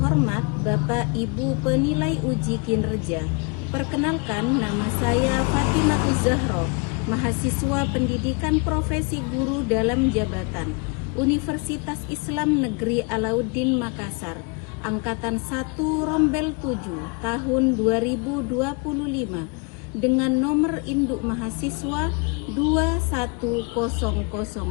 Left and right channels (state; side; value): quieter; right; 33.1 dB